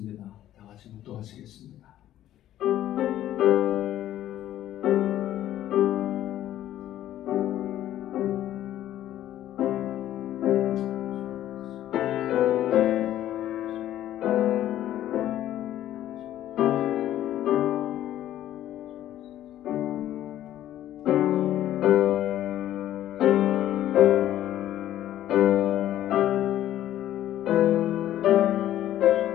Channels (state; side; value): quieter; right; 12.7 dB